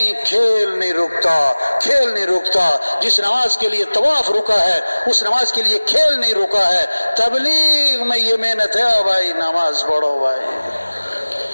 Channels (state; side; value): inverted; both; correlation -1.00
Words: کھیل نہیں رکتا، کھیل نہیں رکتا. جس نماز کے لیے طواف رکا ہے اس نماز کے لیے کھیل نہیں رکا ہے. تبلیغ میں یہ محنت ہے بھائی، نماز پڑھو بھائی.